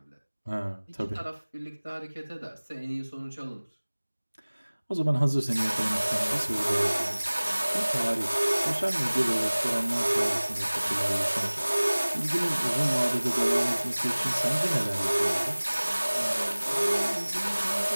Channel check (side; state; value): both; inverted; correlation -1.00